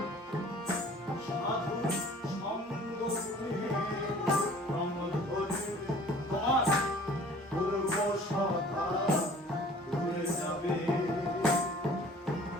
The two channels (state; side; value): normal; both; correlation 0.50